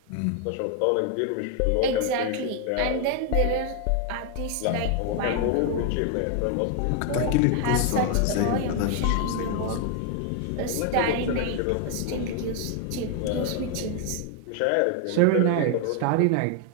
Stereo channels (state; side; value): different; both; correlation 0.00